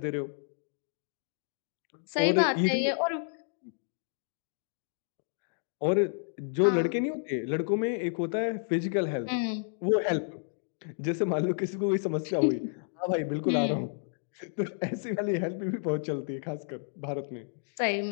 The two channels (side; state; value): right; silent; digital silence